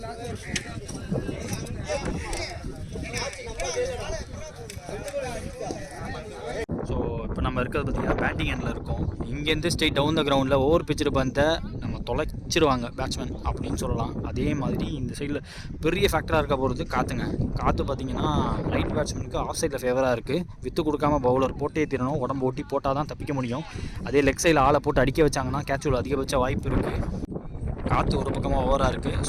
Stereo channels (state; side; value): identical; both; correlation 1.00